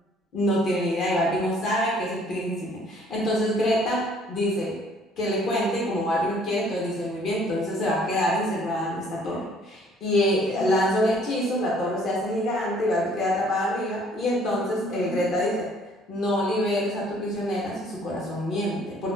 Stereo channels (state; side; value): normal; both; correlation 0.59